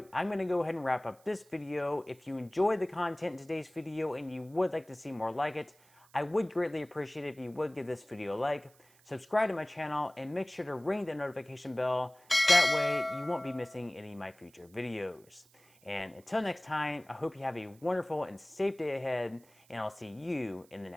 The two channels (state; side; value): noise; right; hiss, 29 dB below the sound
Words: I'm going to go ahead and wrap up this video. If you enjoyed the content in today's video and you would like to see more like it, I would greatly appreciate it if you would give this video a like, subscribe to my channel, and make sure to ring the notification bell. That way you won't be missing any of my future videos. And until next time, I hope you have a wonderful and safe day ahead, and I'll see you in the